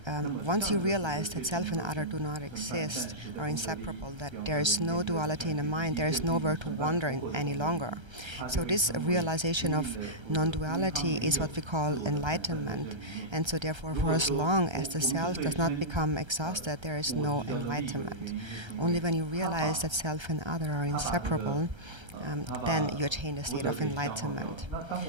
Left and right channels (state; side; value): late; left; 1.3 ms